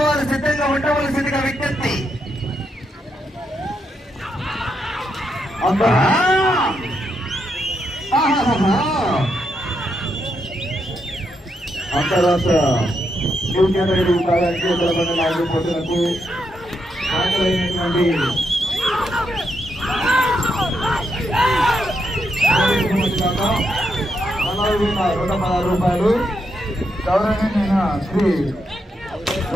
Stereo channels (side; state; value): both; normal; correlation 0.81